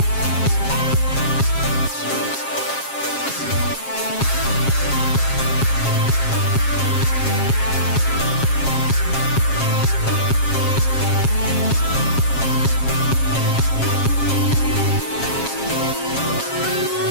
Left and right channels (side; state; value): right; late; 7.4 ms